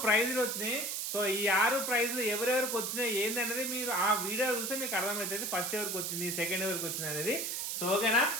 ప్రైజులు వచ్చినాయి. సో ఈ 6 ప్రైజులు ఎవరెవరికి వచ్చినాయి ఏంది అనేది మీరు ఆ వీడియో చూస్తే మీకు అర్థమవుతుంది, ఫస్ట్ ఎవరికి వచ్చింది, సెకండ్ ఎవరికి వచ్చింది అనేది. సో ఓకేనా?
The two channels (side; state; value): right; noise; hiss, 2 dB below the sound